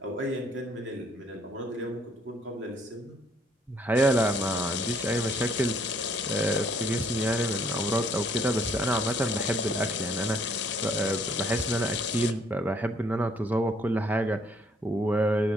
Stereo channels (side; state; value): both; normal; correlation 0.64